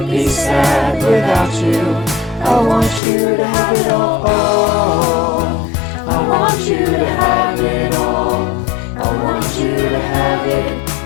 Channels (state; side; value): drops out; right; at 3.0 s